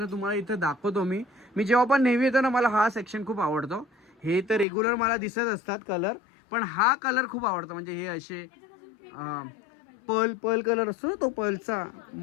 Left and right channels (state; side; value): drops out; right; at 4.7 s